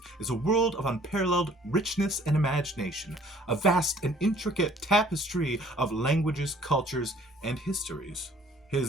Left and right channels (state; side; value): normal; both; correlation 0.56